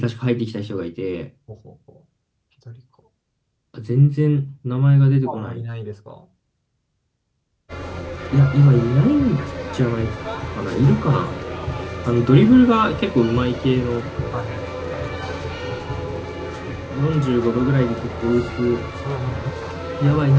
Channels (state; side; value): identical; both; correlation 1.00